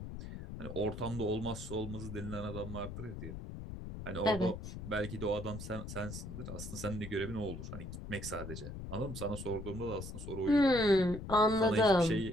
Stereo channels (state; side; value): noise; left; rumble, 9 dB below the sound